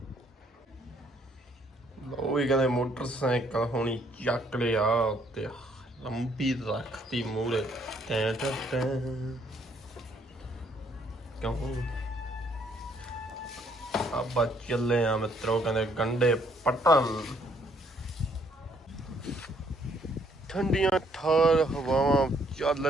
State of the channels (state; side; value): normal; both; correlation 0.67